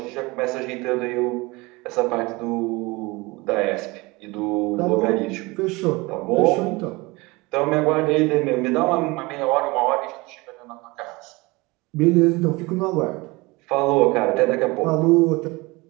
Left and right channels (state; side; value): quieter; left; 23.8 dB